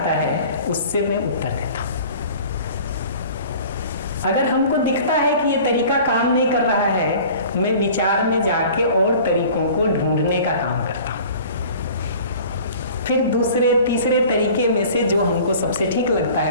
है उससे मैं उत्तर देता हूँ। अगर हमको दिखता है कि ये तरीका काम नहीं कर रहा है, मैं विचार में जाके और तरीकों को ढूंढने का काम करता हूँ। फिर दूसरे तीसरे तरीके में से जो हमको सबसे ठीक लगता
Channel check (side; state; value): both; inverted; correlation -0.45